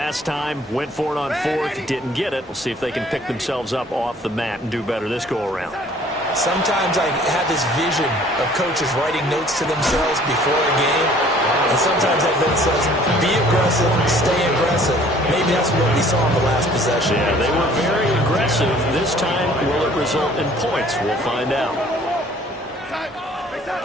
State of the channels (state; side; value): normal; both; correlation 0.55